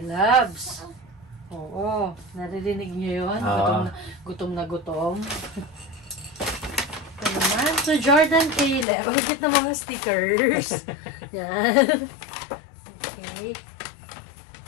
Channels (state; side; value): drops out; right; at 8.8 s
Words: Loves. Oo, naririnig niyo yun? Gutom na gutom. Ito naman. So, Jordan Caleb. Ang cute na mga stickers. Yan. Okay.